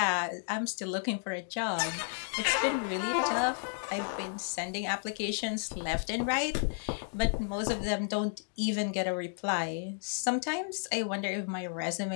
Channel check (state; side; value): silent; right; 56 dB below the other